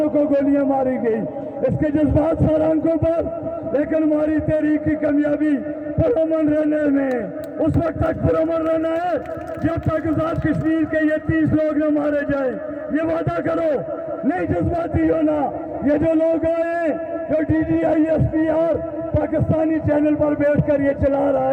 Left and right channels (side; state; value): both; identical; correlation 1.00